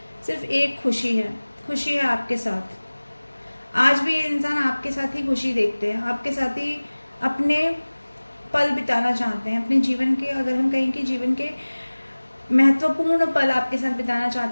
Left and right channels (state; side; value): inverted; both; correlation -1.00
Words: सिर्फ एक खुशी है आपके साथ। आज भी ये इंसान आपके साथ ही खुशी देखते हैं, आपके साथ ही अपने पल बिताना चाहते हैं, अपने जीवन के, अगर हम कहें कि जीवन के महत्वपूर्ण पल आपके साथ बिताना